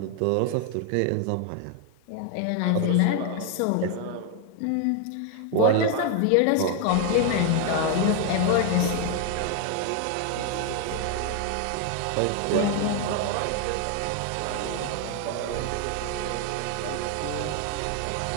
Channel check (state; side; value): different; both; correlation 0.00